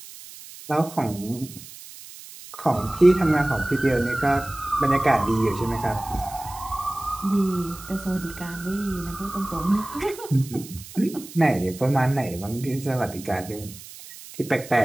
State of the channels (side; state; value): right; noise; hiss, 16 dB below the sound